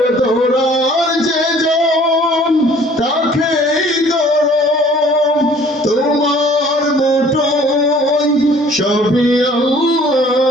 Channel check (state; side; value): normal; both; correlation 0.54